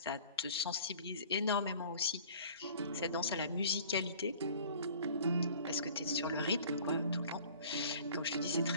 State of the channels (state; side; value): inverted; both; correlation -0.48